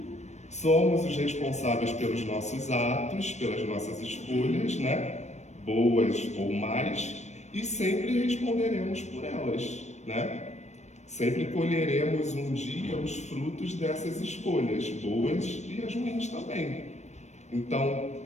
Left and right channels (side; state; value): right; late; 0.33 ms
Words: somos os responsáveis pelos nossos atos, pelas nossas escolhas, né? Boas ou mais, e sempre responderemos por elas, né? Sempre colheremos um dia os frutos dessas escolhas, boas e as ruins também. Então,